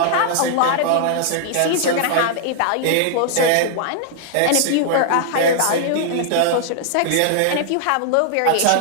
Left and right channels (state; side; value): different; both; correlation -0.01